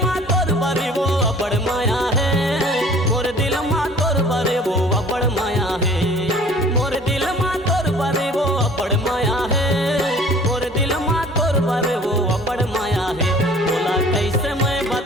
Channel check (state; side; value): normal; both; correlation 0.50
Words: माँ तोर बरे वो अबड़ माया है। मोर दिल माँ तोर बरे वो अबड़ माया है। मोर दिल माँ तोर बरे वो अबड़ माया है। मोर दिल माँ तोर बरे वो अबड़ माया है। बोला कैसे मैं